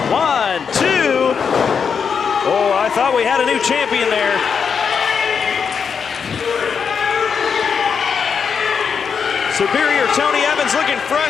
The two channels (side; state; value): right; quieter; 6.4 dB